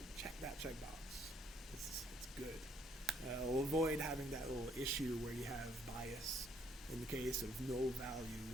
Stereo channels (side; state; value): both; normal; correlation 0.67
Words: check that checkbox. It's good. It'll avoid having that little issue where you have bias in the case of null